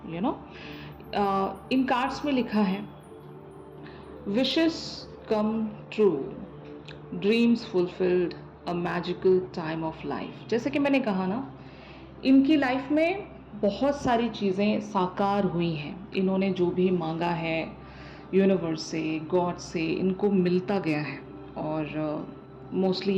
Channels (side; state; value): both; identical; correlation 1.00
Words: you know. In cards में लिखा है wishes come true, dreams fulfilled, a magical time of life. जैसे कि मैंने कहा ना, इनकी लाइफ में बहुत सारी चीज़ें साकार हुई हैं। इन्होंने जो भी मांगा है यूनिवर्स से, गॉड से, इनको मिलता गया है और मोस्टली